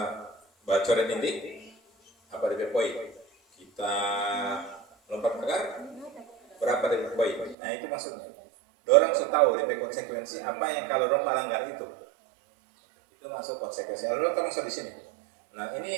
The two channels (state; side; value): drops out; left; at 7.6 s